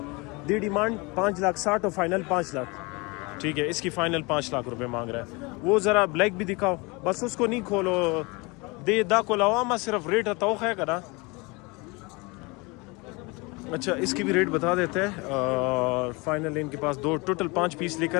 دی ڈیمانڈ 5,60,000 اور فائنل 5 لاکھ. ٹھیک ہے اس کی فائنل 5 لاکھ روپے مانگ رہا ہے. وہ ذرا بلیک بھی دکھاؤ، بس اس کو نہیں کھولو دے دا کو لواما صرف ریٹ توخ ہے کرا. اچھا اس کی بھی ریٹ بتا دیتے ہیں. فائنل ان کے پاس 2 ٹوٹل 5 پیس لے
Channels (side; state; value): right; quieter; 26.8 dB